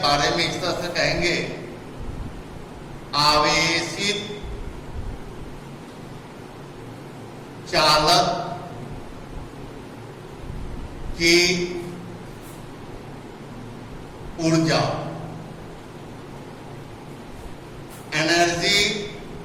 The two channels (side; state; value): both; identical; correlation 1.00